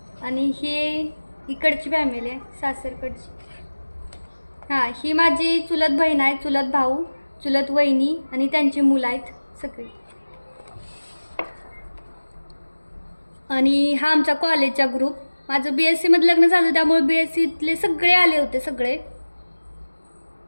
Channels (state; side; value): inverted; both; correlation -1.00